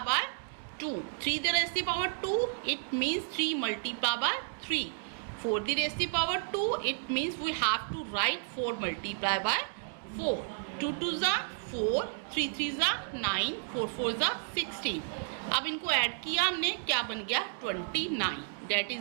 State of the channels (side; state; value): left; silent; digital silence